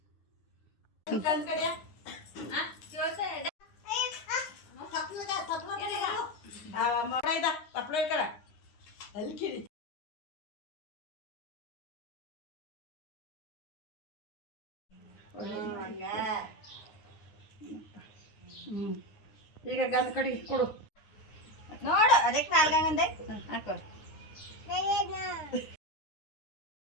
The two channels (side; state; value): right; late; 9.6 ms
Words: ಈಗ ಗಂಧ ಕಡಿ ಕೊಡು ನೋಡು. ಅದಕ್ಕೆ ನಾಲ್ಕಂದೆ ಹಾಕೋ.